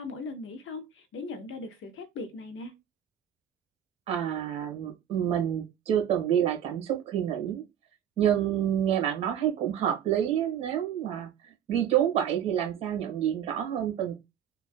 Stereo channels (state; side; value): quieter; left; 9.3 dB